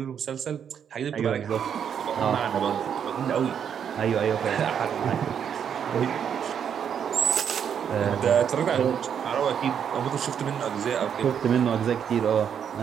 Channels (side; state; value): left; quieter; 8.1 dB